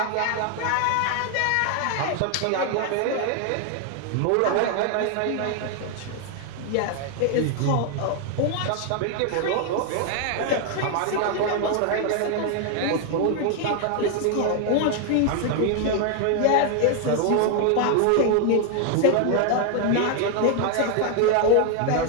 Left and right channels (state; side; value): different; both; correlation 0.00